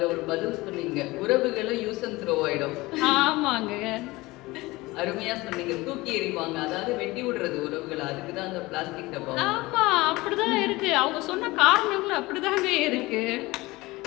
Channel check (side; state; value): right; quieter; 20.9 dB